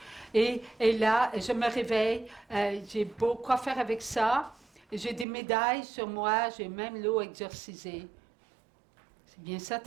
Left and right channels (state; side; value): drops out; left; at 5.2 s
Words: et là, je me réveille, j'ai beau quoi faire avec ça. J'ai des médailles sur moi, j'ai même l'eau exorcisée. C'est bien ça